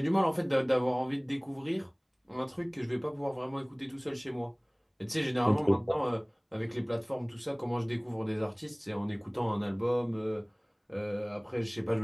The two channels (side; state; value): both; identical; correlation 1.00